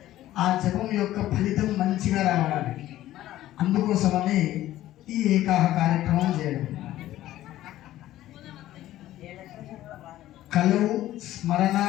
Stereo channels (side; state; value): right; quieter; 14.2 dB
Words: ఆ జపం యొక్క ఫలితం మంచిగా రావడానికి అందుకోసమని ఈ ఏకాహ కార్యక్రమం చేయడం. కలవు